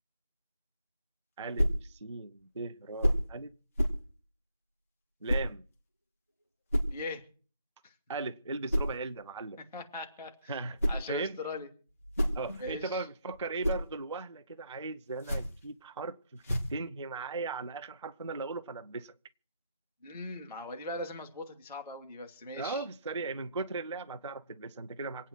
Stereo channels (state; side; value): inverted; both; correlation -0.75